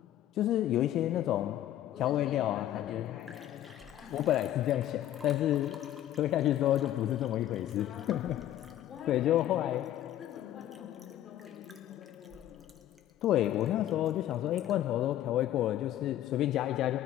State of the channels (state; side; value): quieter; right; 12.6 dB